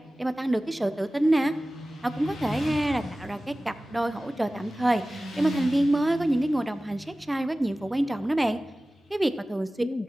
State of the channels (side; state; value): both; normal; correlation 0.97